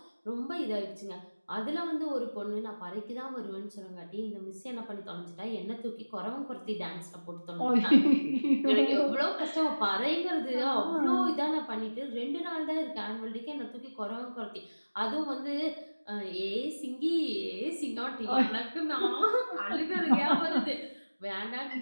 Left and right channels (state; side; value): inverted; both; correlation -1.00